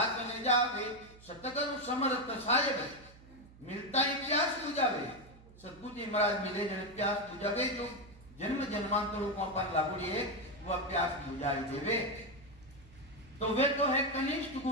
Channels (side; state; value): right; noise; hum, 22 dB below the sound